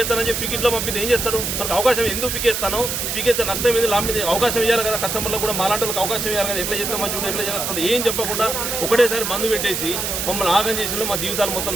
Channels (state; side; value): noise; right; hiss, 2 dB below the sound